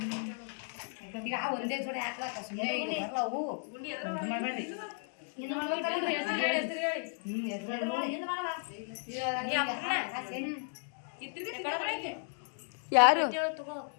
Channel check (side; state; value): right; silent; 55 dB below the other